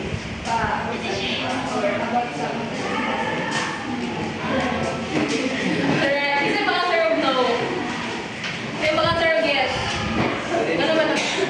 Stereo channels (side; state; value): both; identical; correlation 1.00